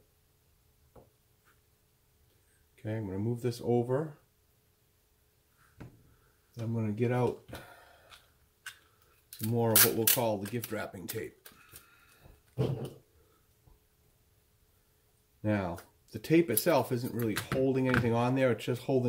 Okay, I'm going to move this over. I'm going to get out some more of what we'll call the gift wrapping tape. Now, the tape itself isn't really holding anything on there, it's just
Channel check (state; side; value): identical; both; correlation 1.00